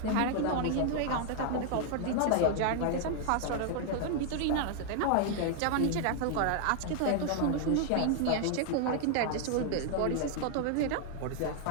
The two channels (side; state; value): both; different; correlation 0.00